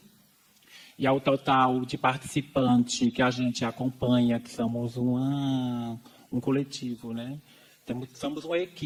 E ao total de participantes que a gente acompanha, que somos um coletivo, né? Somos uma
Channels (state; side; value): identical; both; correlation 1.00